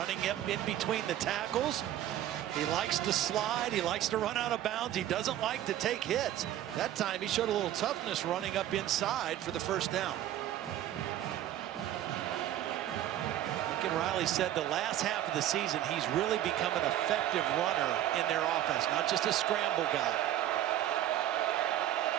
up in between the tackles. He likes to slide. He likes to run out of bounds. He doesn't like to take hits. That time he showed a little toughness running up inside for the first down. Lincoln Riley said the last half of the season he's really become an effective runner in their offense, not just a scramble guy.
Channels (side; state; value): left; quieter; 12.4 dB